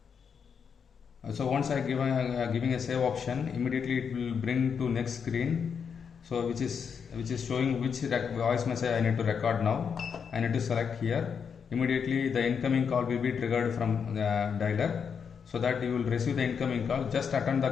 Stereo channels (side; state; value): right; quieter; 6.7 dB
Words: So once I giving a save option, immediately it will bring to next screen. So which is showing which voice message I need to record now. I need to select here. Immediately the incoming call will be triggered from the dialer, so that you will receive the incoming call. Just attend